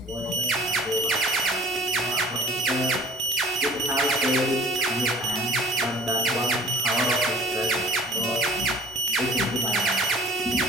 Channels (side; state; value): both; normal; correlation 0.49